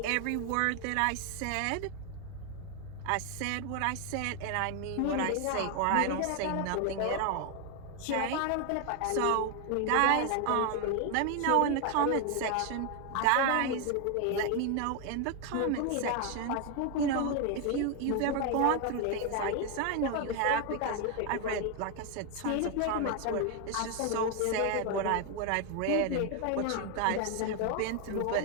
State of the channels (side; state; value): both; different; correlation 0.01